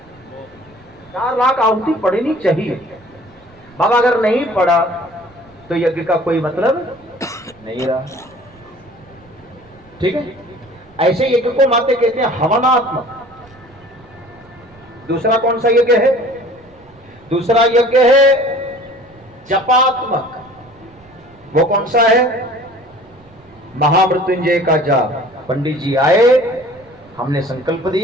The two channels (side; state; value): right; noise; rumble, 28 dB below the sound